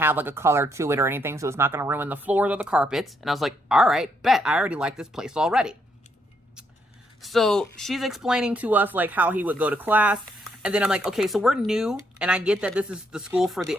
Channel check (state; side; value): normal; both; correlation 0.75